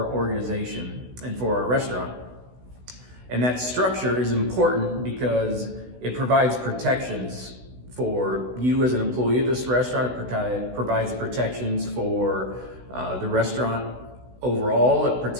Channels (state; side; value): late; left; 16 ms